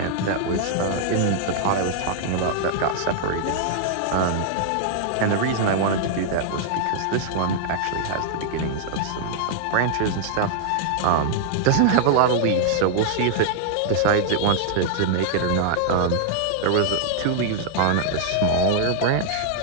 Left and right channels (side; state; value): both; different; correlation -0.01